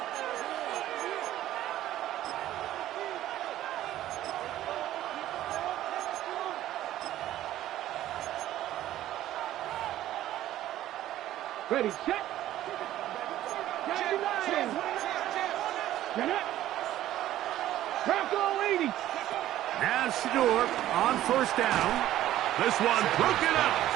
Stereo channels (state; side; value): quieter; left; 13.5 dB